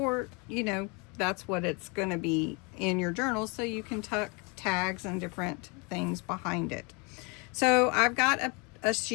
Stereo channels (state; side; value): quieter; right; 30.8 dB